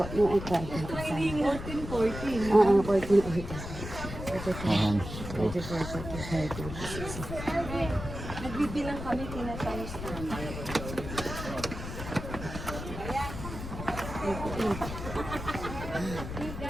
yung ika. 14. Oo, 14. Ayan. 44, 45, 46. Nagbibilang kami, tinatayos namin.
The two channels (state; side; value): noise; left; rumble, 8 dB below the sound